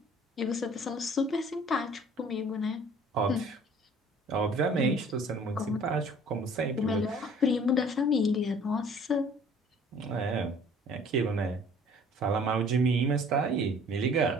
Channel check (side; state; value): both; normal; correlation 0.53